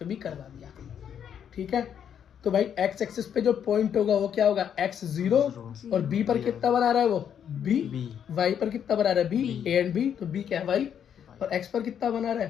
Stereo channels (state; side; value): quieter; right; 8.6 dB